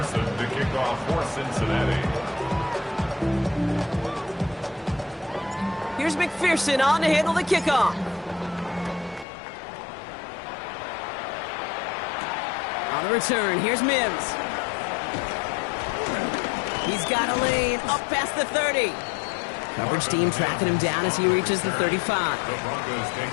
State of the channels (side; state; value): right; drops out; at 9.2 s